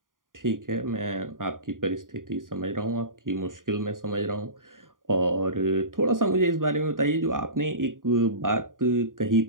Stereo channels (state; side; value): late; left; 0.89 ms